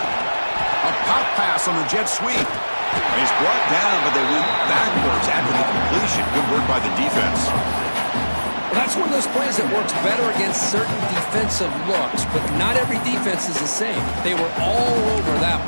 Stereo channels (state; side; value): inverted; both; correlation -1.00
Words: A pop pass on the jet sweep. He's brought down, but they went backwards after the completion. Good work by the defense. Well, that's one of those plays that works better against certain defensive looks, but not every defense is the same. They were all over that